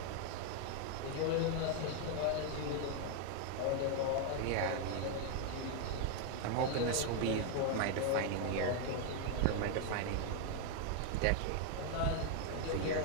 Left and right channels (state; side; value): different; both; correlation 0.00